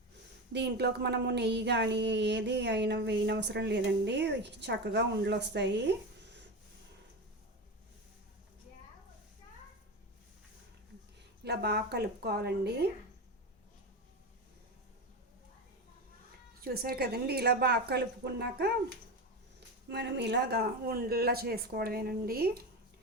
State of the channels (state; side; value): normal; both; correlation 0.21